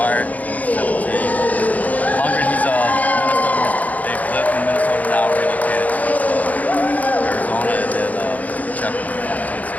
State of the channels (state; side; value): late; right; 0.076 ms